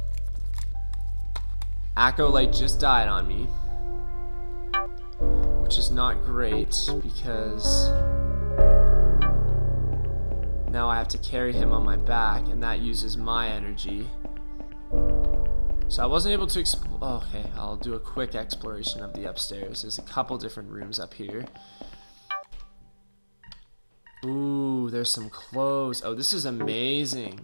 Acolyte just died on me, which is not great because now I have to carry him on my back, and that uses my energy. So I wasn't able to okay, I'll do a quick exploration of the upstairs. There's a couple different rooms up here. Ooh, there's some clothes. Oh, this is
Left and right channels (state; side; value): inverted; both; correlation -1.00